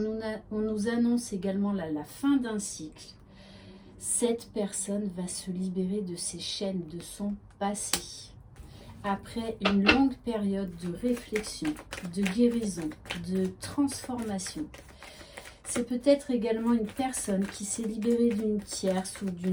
nous annonce également la fin d'un cycle. Cette personne va se libérer de ses chaînes, de son passé. Après une longue période de réflexion, de guérison, de transformation. C'est peut-être également une personne qui s'est libérée d'une tierce ou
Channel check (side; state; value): both; identical; correlation 1.00